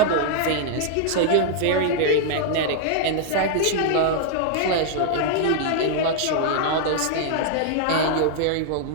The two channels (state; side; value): different; both; correlation -0.01